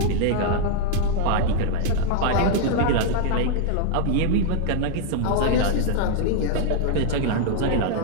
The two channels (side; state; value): both; different; correlation 0.00